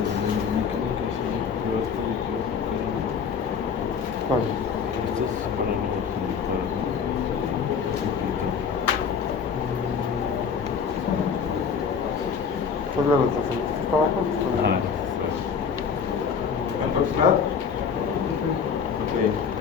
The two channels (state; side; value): quieter; right; 6.4 dB